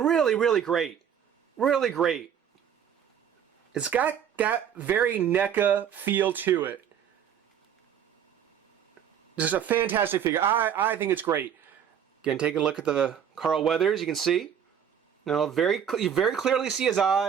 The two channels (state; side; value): quieter; left; 8.6 dB